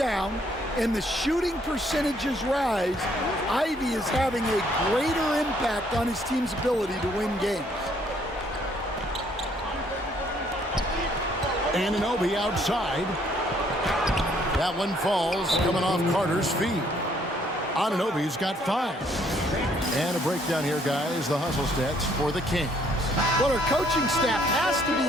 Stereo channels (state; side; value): normal; both; correlation 0.66